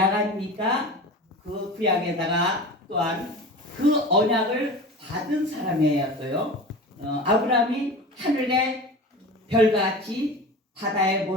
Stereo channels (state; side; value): normal; both; correlation 0.33